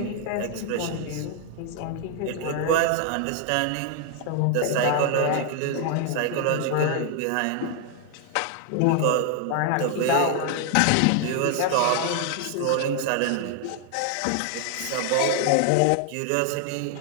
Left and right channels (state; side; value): different; both; correlation 0.00